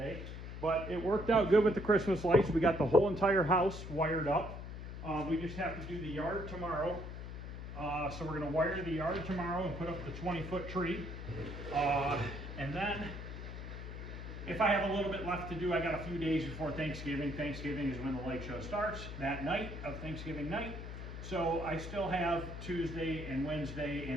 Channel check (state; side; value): noise; left; hum, 9 dB below the sound